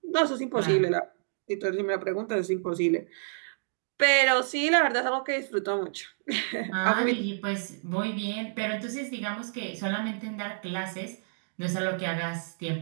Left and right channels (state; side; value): silent; left; digital silence